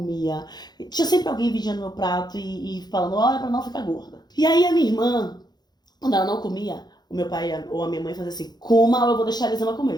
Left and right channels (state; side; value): late; right; 0.20 ms